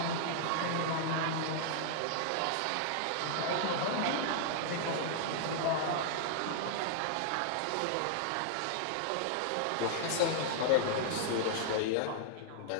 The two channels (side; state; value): both; different; correlation -0.01